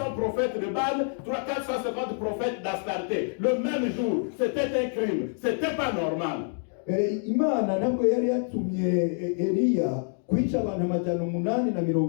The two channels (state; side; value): silent; right; 59 dB below the other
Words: prophètes de Baal, 450 prophètes d'Astarté. Le même jour, c'était un crime, c'était pas normal. Imana ntabwo yari yatumye Eliya kwica abantu